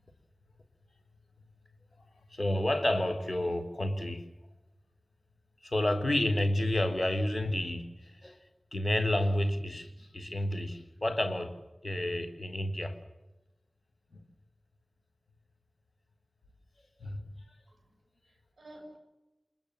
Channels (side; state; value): both; normal; correlation 0.96